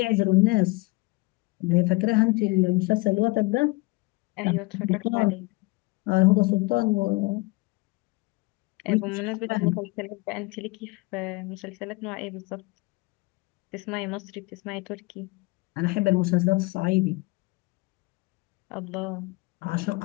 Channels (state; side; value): quieter; right; 24.8 dB